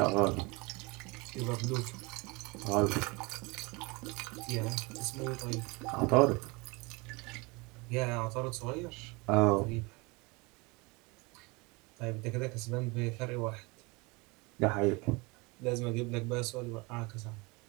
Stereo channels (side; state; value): left; quieter; 26.6 dB